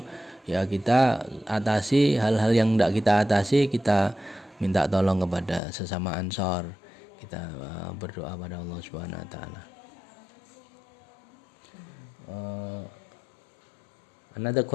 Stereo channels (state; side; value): drops out; right; at 5.6 s